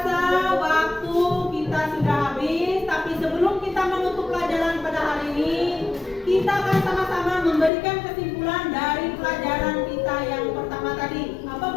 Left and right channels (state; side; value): drops out; right; at 7.7 s